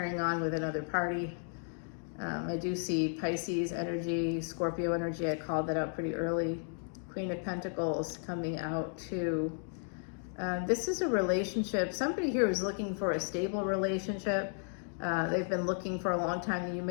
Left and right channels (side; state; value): right; silent; 55 dB below the other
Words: on with another party. I do see Pisces energy, Scorpio energy. I called that out pretty early. Queen of Pentacles coming out too. This is a relationship. Somebody here is looking for a stable relationship. They've been looking for a long time. You